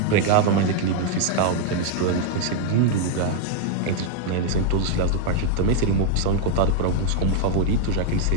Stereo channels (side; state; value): both; different; correlation 0.00